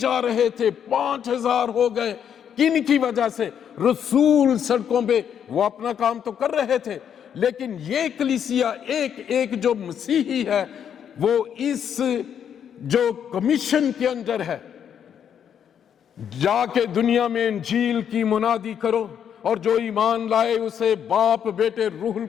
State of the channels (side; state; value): right; quieter; 8.6 dB